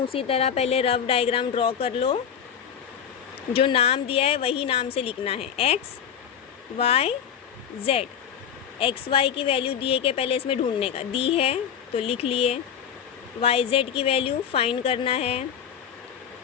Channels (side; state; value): right; quieter; 8.4 dB